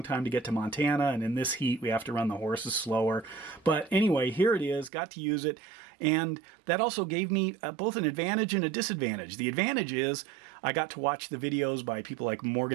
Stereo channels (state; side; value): drops out; left; at 4.9 s